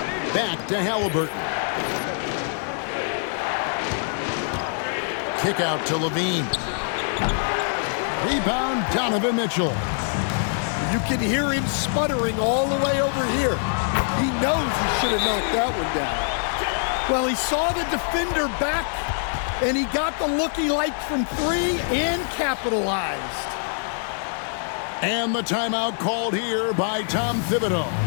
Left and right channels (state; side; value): silent; right; digital silence